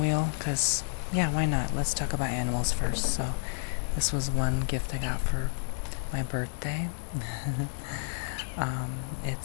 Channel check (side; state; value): right; silent; digital silence